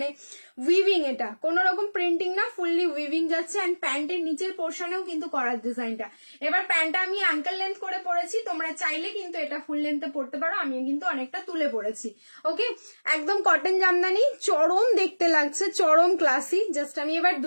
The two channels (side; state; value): both; inverted; correlation -1.00